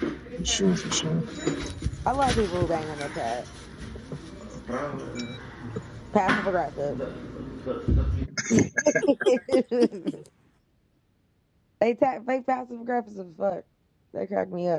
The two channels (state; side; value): identical; both; correlation 1.00